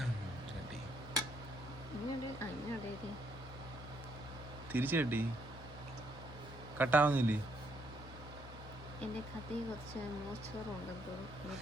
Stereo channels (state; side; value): normal; both; correlation 0.72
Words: തിരിച്ചു കട്ടി കട്ടാവുന്നില്ലേ? എന്റെ കഥയിൽ കുറച്ച് മോശമുണ്ടെന്ന് തോന്നുന്നു.